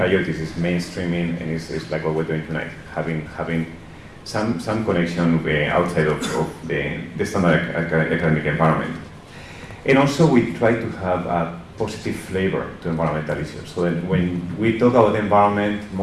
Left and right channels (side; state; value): both; identical; correlation 1.00